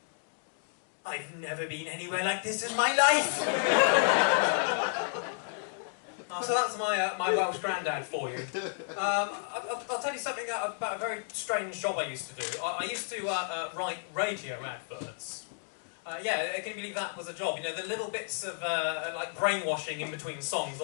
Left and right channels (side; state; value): right; silent; digital silence